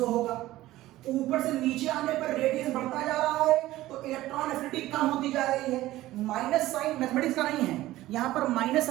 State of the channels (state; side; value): quieter; left; 16.1 dB